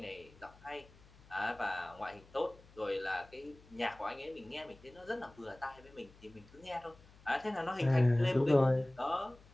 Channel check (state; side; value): noise; left; hum, 24 dB below the sound